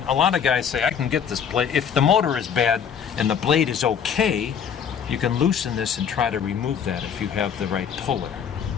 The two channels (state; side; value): quieter; right; 7.7 dB